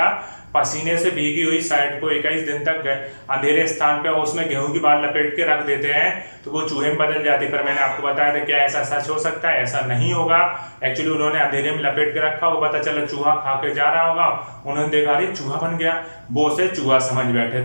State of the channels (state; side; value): inverted; both; correlation -1.00